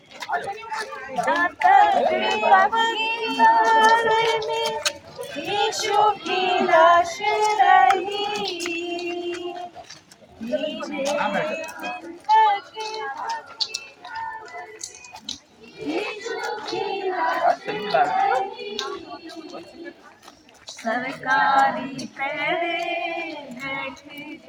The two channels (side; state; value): both; identical; correlation 1.00